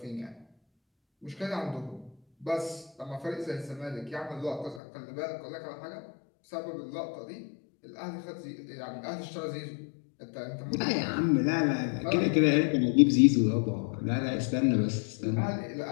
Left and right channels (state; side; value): drops out; right; at 4.8 s